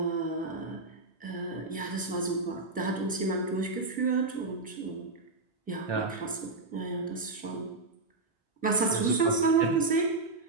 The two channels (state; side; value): quieter; left; 3.4 dB